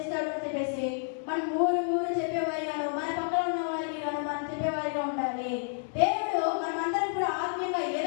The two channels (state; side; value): silent; right; digital silence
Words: అని చెప్పేసి మనం ఊరు చెప్పేవారిగాను, మన పక్కన ఉన్న వారికి గాను మనం చెప్పేవారిగా ఉండాలి. దేవుడు మనమందరం కూడా ఆత్మీయంగా